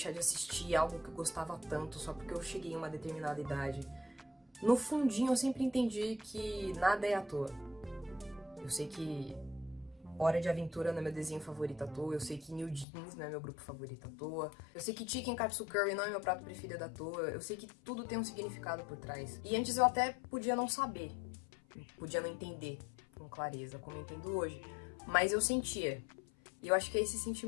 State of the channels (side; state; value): right; drops out; at 12.9 s